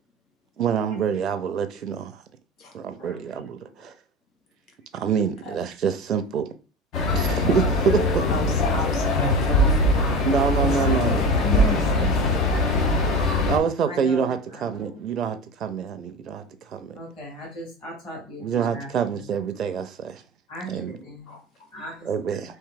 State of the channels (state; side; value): normal; both; correlation 0.30